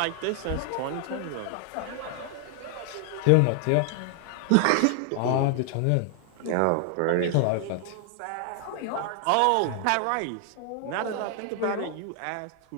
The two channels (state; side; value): different; both; correlation 0.00